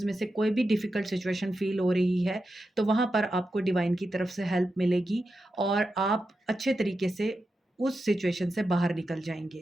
में से कोई भी डिफ़िकल्ट सिचुएशन फ़ील हो रही है, तो वहाँ पर आपको डिवाइन की तरफ से हेल्प मिलेगी और आप अच्छे तरीके से उस सिचुएशन से बाहर निकल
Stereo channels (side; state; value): both; normal; correlation 0.89